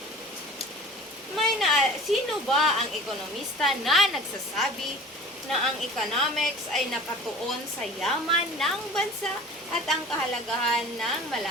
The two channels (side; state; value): both; normal; correlation 0.42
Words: Sino ba ang ekonomista na nagsasabi na ang economics ay nakatuon sa yaman ng bansa at ang kahalagahan ng